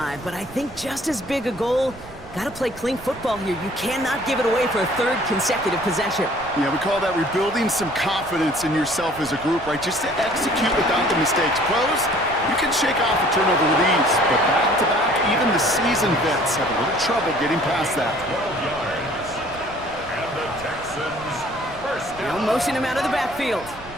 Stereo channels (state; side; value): noise; right; rumble, 18 dB below the sound